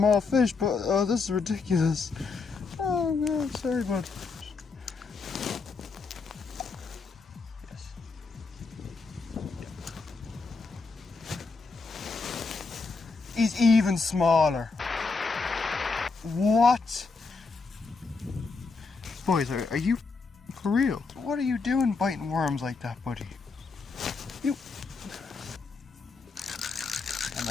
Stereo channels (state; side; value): quieter; right; 4.4 dB